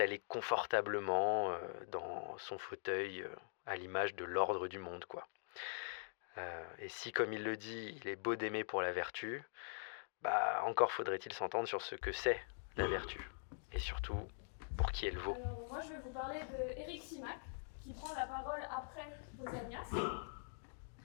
confortablement dans son fauteuil à l'image de l'ordre du monde, quoi. Et si, comme il le dit, il est beau d'aimer pour la vertu, encore faudrait-il s'entendre sur ce que c'est la vertu. Et surtout, pour qui elle vaut. Alors, moi, je vais vous parler d'Éric Simac, qui prend la parole après Pausanias.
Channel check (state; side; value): silent; right; digital silence